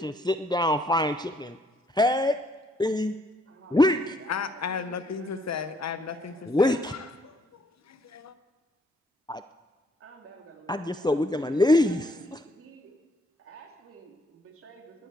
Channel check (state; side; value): normal; both; correlation 0.68